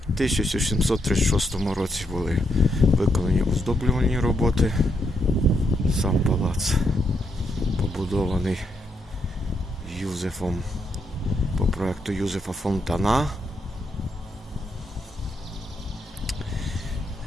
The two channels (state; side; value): normal; both; correlation 0.79